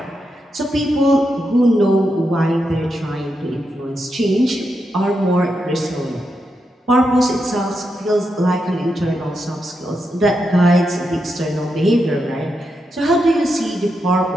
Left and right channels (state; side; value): normal; both; correlation 0.85